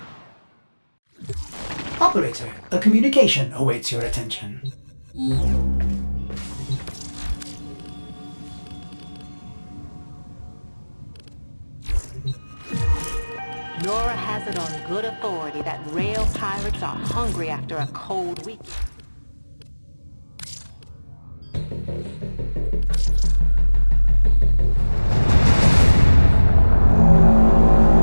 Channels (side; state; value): both; inverted; correlation -1.00